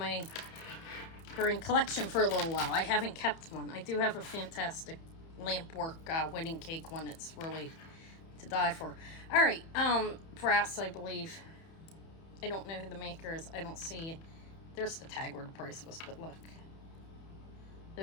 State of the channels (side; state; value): right; late; 31 ms